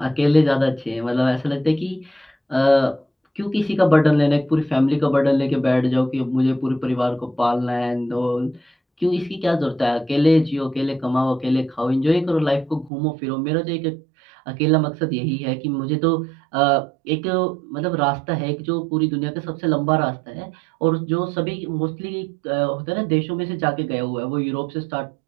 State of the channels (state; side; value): drops out; left; at 12.9 s